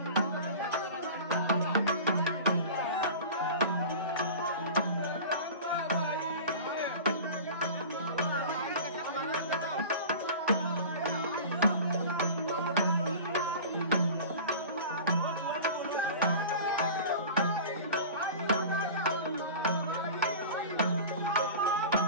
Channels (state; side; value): inverted; both; correlation -0.36